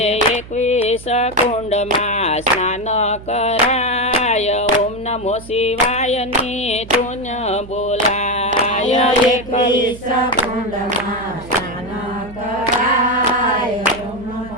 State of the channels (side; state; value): right; noise; hum, 17 dB below the sound